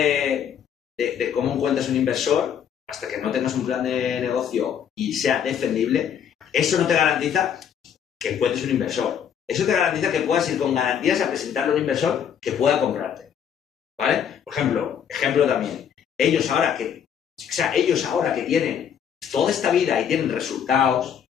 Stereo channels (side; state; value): right; quieter; 8.4 dB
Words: cómo encuentras un inversor, hasta que no tengas un plan de negocio y sea defendible, eso no te garantiza que encuentres un inversor. Eso te garantiza que puedas ir con garantías a presentarle a un inversor que pueda comprarte. ¿Vale? Por ejemplo también. Ellos ahora que tienen toda esta vida y tienen resultados,